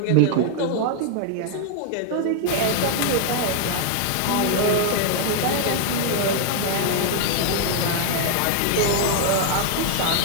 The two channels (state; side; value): different; both; correlation 0.00